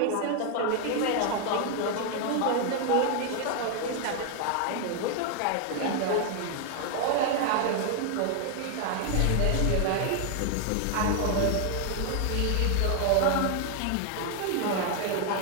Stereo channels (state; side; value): different; both; correlation 0.00